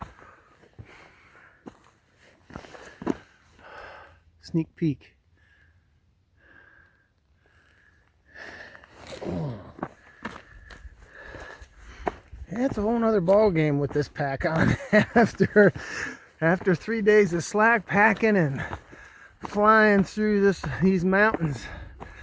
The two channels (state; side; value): identical; both; correlation 1.00